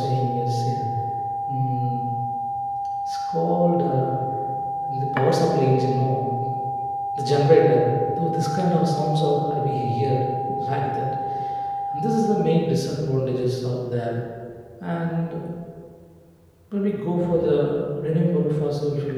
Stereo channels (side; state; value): both; identical; correlation 1.00